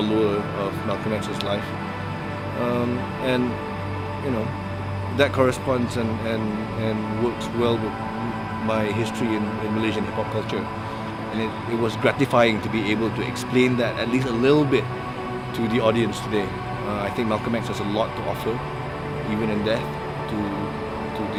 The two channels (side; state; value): both; identical; correlation 1.00